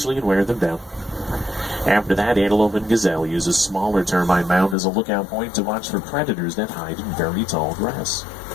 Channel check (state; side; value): drops out; right; at 4.8 s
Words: and wear them down. After that, antelope and gazelle use a smaller termite mound as a lookout point to watch for predators that hide in very tall grass.